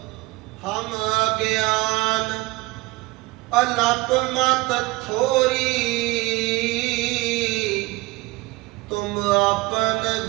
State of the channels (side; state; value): left; quieter; 21.6 dB